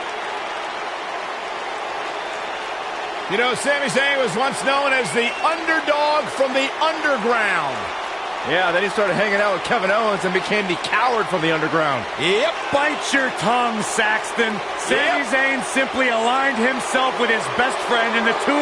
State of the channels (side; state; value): both; identical; correlation 1.00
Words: You know, Sami Zayn was once known as the underdog from the underground. Yeah, then he started hanging out with Kevin Owens and became the coward from the underground. Yep, bite your tongue, Saxton. Sami Zayn simply aligned himself with his best friend, and the two